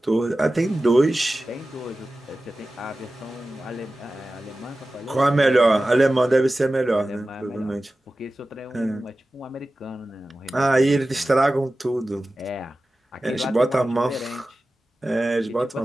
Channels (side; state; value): both; normal; correlation 0.95